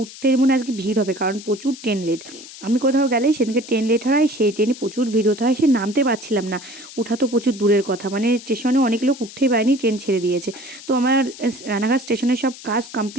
মনে হয় আজকে ভিড় হবে, কারণ প্রচুর ট্রেন লেট। আমি কোথাও গেলেই সেদিনকে ট্রেন লেট হয়, সেই ট্রেনে প্রচুর ভিড় হতে হয়, সে নামতে পারছিলাম না। উঠা তো প্রচুর দূরের কথা, মানে স্টেশনে অনেক লোক উঠতেই পারেনি, ট্রেন ছেড়ে দিয়েছে। তো আমার রানাঘাট স্টেশনের সব কাজ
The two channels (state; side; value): noise; left; hiss, 16 dB below the sound